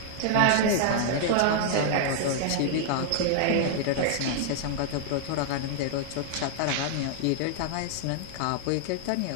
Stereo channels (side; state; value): both; different; correlation -0.01